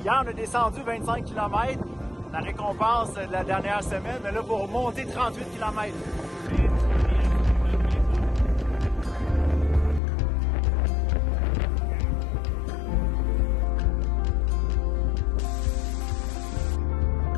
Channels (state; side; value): drops out; right; at 10.0 s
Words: on a descendu 25 km, la récompense de la dernière semaine. Mais là, pour monter 38 km.